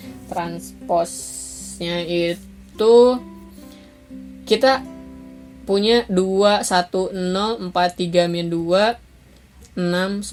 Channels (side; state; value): both; identical; correlation 1.00